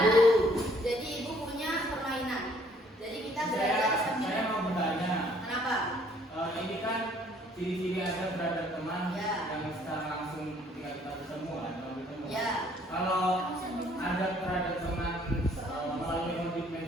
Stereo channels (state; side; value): normal; both; correlation 0.62